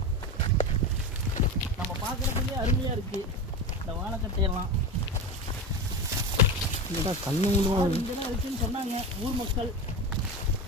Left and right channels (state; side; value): normal; both; correlation 0.23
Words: நம்ம பார்க்கறதுக்கே அருமையா இருக்கு இந்த வாழைக்கட்டையெல்லாம். இங்கதான் இருக்குன்னு சொன்னாங்க ஊர் மக்கள்.